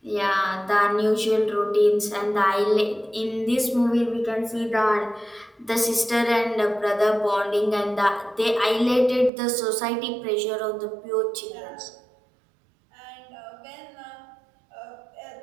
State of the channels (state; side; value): drops out; left; at 9.3 s